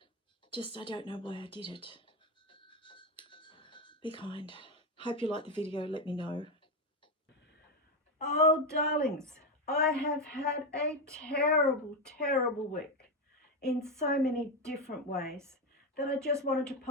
I don't know why I did it. Be kind. Hope you like the video. Let me know. Oh, darlings, I have had a terrible, terrible week in so many different ways that I just wanted to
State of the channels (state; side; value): normal; both; correlation 0.10